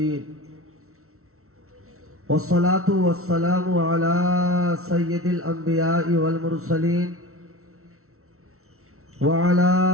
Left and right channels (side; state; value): left; late; 0.63 ms